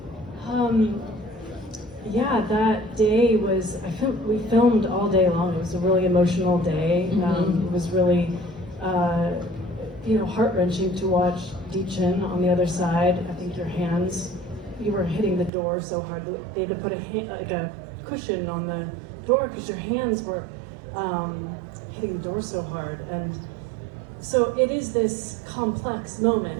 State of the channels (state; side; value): drops out; left; at 15.5 s